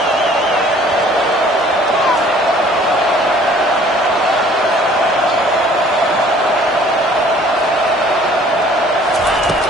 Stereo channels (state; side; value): normal; both; correlation 0.54